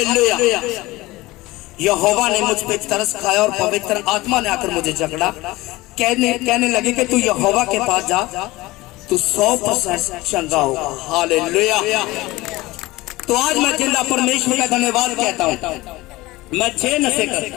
यहोवा ने मुझ पे तरस खाया और पवित्र आत्मा ने आकर मुझे जकड़ा, कहने लगे कि तू यहोवा के पास जा, तू 100% चंगा होगा। हालेलुया। तो आज मैं जिंदा परमेश्वर का धन्यवाद कहता हूँ। मैं 6 नशे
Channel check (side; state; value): right; quieter; 19.7 dB